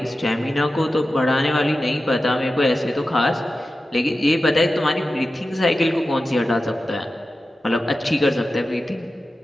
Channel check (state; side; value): normal; both; correlation 0.93